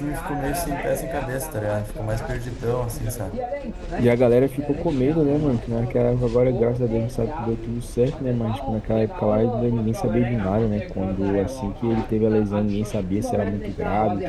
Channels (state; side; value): identical; both; correlation 1.00